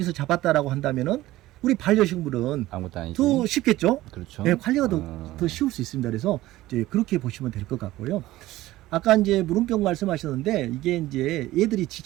잡았다라고 한다면은 우리 반려식물은 아무것도 아니지. 더 쉽겠죠. 그렇죠. 네, 관리가 더 쉬울 수 있습니다. 그래서 이제 그렇게 보시면 될 것 같고요. 아까 이제 물음병 말씀하셨는데 이게 이제 얘들이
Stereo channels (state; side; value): quieter; left; 16.6 dB